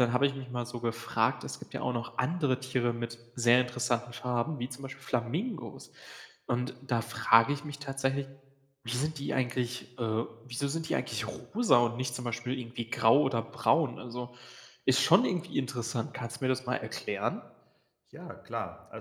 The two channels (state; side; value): identical; both; correlation 1.00